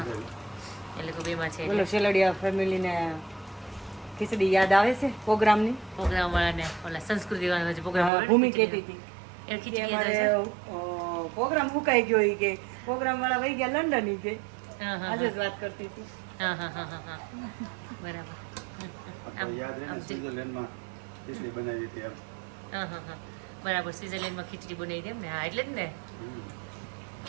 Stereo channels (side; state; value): left; drops out; at 8.1 s